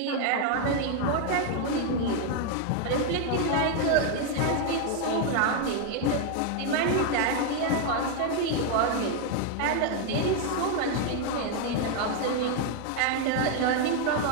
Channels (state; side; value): different; both; correlation 0.01